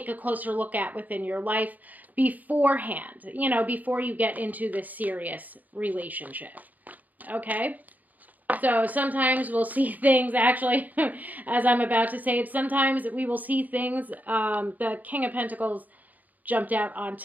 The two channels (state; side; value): late; left; 0.081 ms